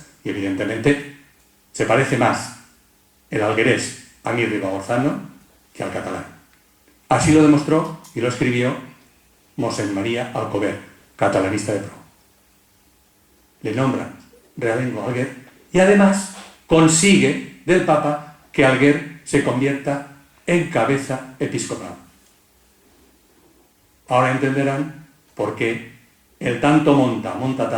y evidentemente se parece más el alguerés a mi ribagorzano que al catalán. Así lo demostró y lo escribió Mosén María Alcover, catalanista de pro. Le nombran realengo a Alguer y además consigue del Papa que Alguer se convierta en cabeza episcopal. Ahora entenderán por qué el tanto monta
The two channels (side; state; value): both; identical; correlation 1.00